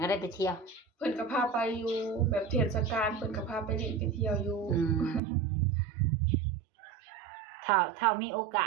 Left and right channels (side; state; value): left; drops out; at 5.2 s